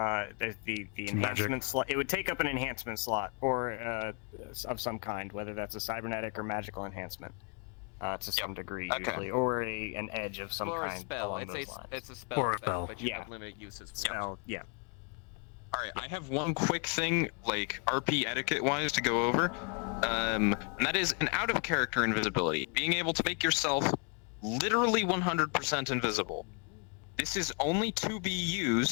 enhancement slot. It would take up an enhancement slot or of some kind, whether that's a cybernetic or magical enhancement, to some degree usually, or an edge of some kind along those lines. It's a spell, but you have limited uses. Spell, yeah. All right, I have one quick thing, like RP etiquette-wise, to go over, and that is an out-of-character invisibility, being able to make yourself literally 100% invisible. This is only to be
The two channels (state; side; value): quieter; right; 35.9 dB